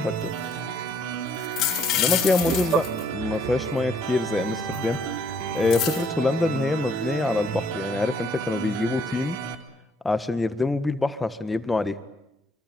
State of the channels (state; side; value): normal; both; correlation 0.67